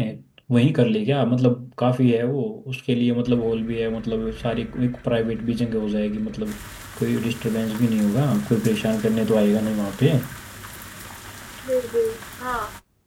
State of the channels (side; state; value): both; identical; correlation 1.00